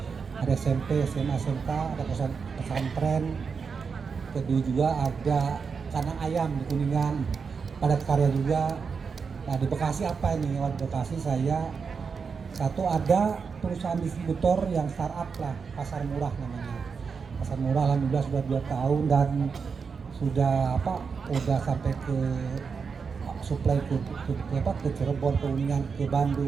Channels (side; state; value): left; quieter; 5.6 dB